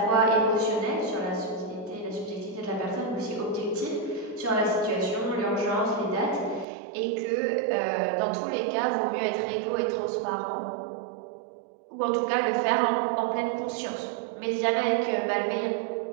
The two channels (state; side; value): drops out; left; at 6.7 s